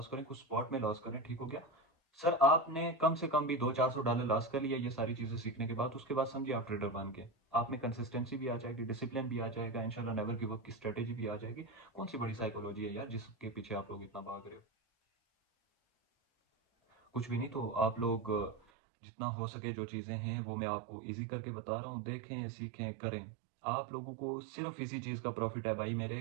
करें, कुछ स्पॉट में लॉस करें, ठीक हो गया। सर आपने कम से कम भी $200-400 लॉस कर लिया ये सारी चीजें सीखने के बाद, उसके बाद समझिए आप ट्रेडर बन गए। आप में कंसिस्टेंसी भी आ जाएगी, डिसिप्लिन भी आ जाएगा, इंशाल्लाह नेवर गिव अप की स्ट्रेटेजी भी आ जाएगी। कौन सी बड़ी साइकोलॉजी है यार जिसके पीछे आप लोग इतना भाग रहे हो। कुछ भी नहीं। तो आप लोग जितना हो सके जो चीज़ें हैं वो मैं आपको इजी करके बता रहा हूँ, देखें, सीखें, करें। आप लोगों को सिर्फ इसी चीज़ का प्रॉफिट है भाई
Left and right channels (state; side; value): drops out; left; at 18.6 s